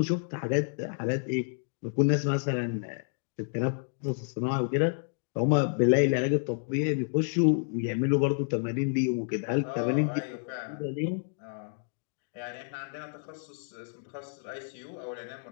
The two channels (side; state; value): right; silent; digital silence